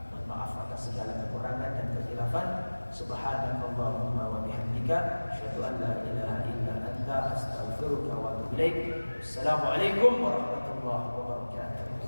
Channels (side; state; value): both; inverted; correlation -1.00